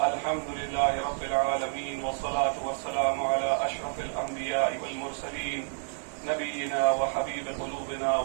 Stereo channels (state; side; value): silent; left; digital silence